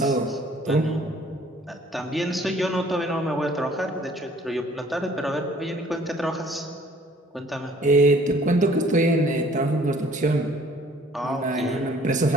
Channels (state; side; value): normal; both; correlation 0.56